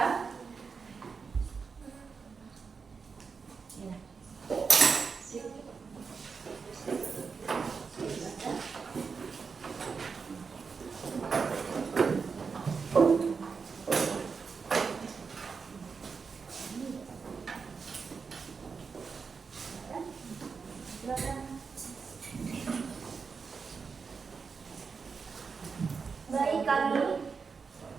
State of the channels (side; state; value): left; quieter; 5.3 dB